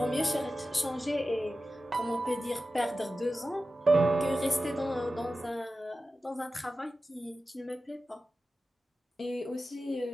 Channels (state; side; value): normal; both; correlation 0.94